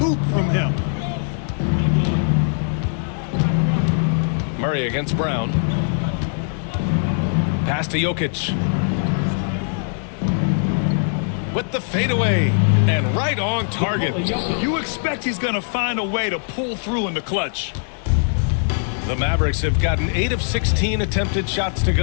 from him. Murray against Brown. Pass to Jokic. With the fadeaway and right on target. You expect he's going to find a way to pull through in the clutch. The Mavericks have gotten 8 of 16 attempted shots to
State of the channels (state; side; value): silent; right; digital silence